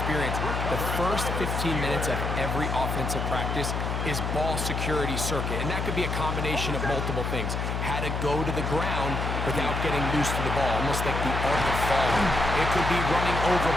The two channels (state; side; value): noise; left; hum, 2 dB below the sound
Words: the first 15 minutes of every offensive practice is ball security circuit, and that could be a combination of multiple things. How to go to the ground without getting loose to the ball, almost like the art of falling. It could be running over